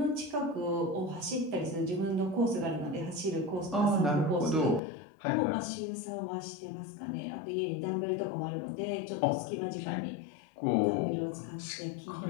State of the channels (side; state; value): right; drops out; at 4.8 s